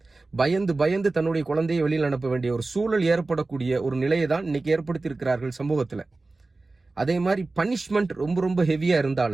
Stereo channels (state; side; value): quieter; left; 3.4 dB